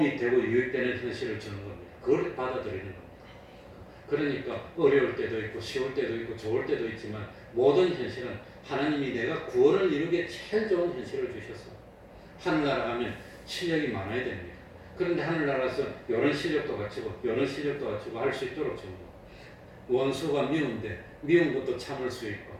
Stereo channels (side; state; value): both; identical; correlation 1.00